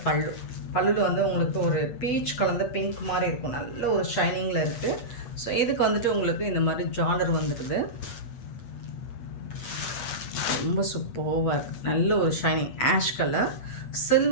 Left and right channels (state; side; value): late; right; 8.4 ms